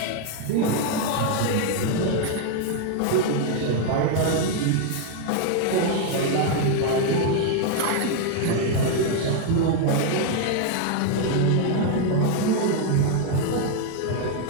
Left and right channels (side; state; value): both; different; correlation 0.00